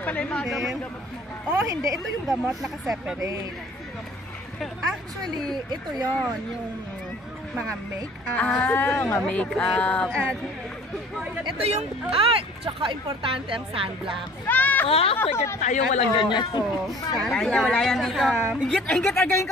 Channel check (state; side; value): normal; both; correlation 0.51